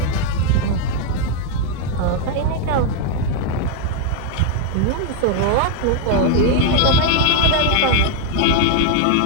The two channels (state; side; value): different; both; correlation 0.01